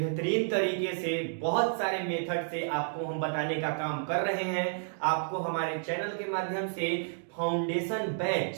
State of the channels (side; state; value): left; silent; digital silence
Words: तरीके से बहुत सारे मेथड से आपको हम बताने का काम कर रहे हैं। आपको हमारे चैनल के माध्यम से फाउंडेशन